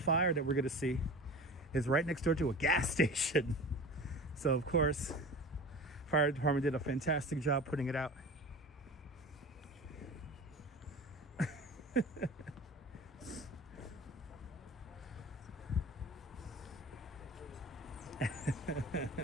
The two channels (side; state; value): both; normal; correlation 0.36